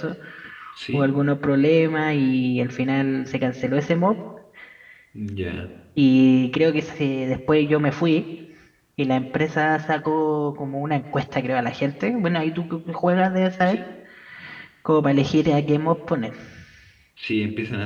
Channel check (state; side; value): identical; both; correlation 1.00